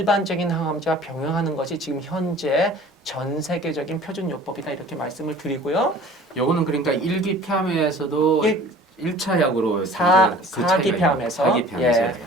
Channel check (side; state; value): both; normal; correlation 0.46